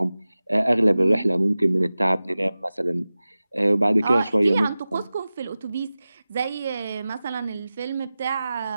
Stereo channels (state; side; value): inverted; both; correlation -0.96